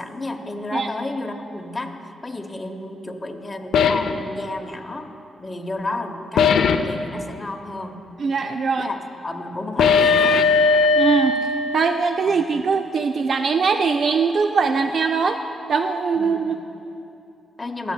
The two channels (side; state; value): both; normal; correlation 0.58